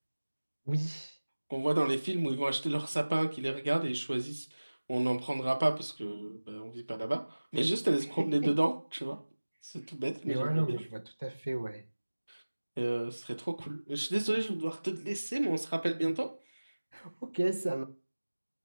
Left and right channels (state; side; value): inverted; both; correlation -1.00